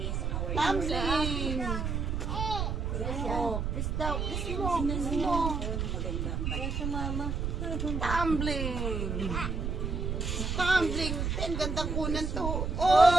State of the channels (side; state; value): right; noise; rumble, 1 dB below the sound